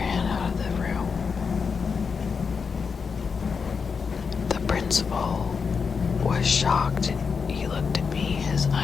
out of the room. The principal was shocked. He looked at me, his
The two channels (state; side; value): quieter; right; 5.6 dB